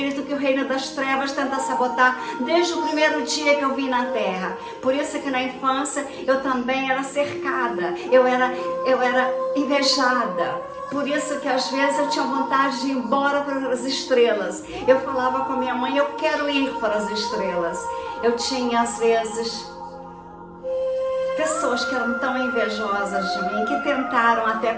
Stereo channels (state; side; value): identical; both; correlation 1.00